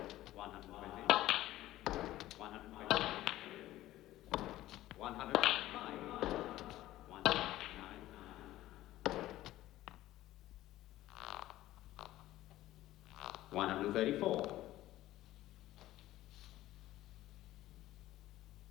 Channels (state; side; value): quieter; right; 15.2 dB